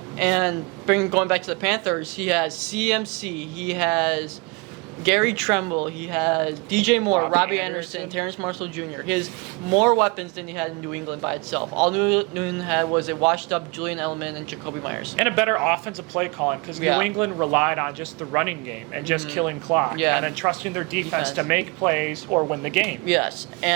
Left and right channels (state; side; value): quieter; left; 28.9 dB